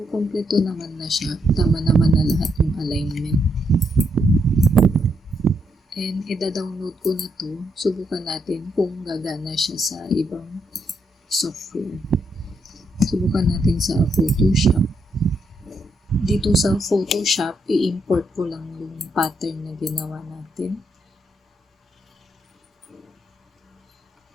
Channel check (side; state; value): both; normal; correlation 0.78